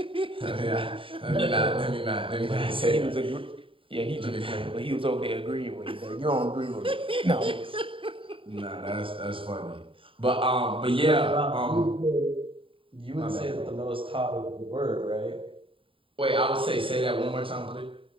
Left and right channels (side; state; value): left; late; 0.25 ms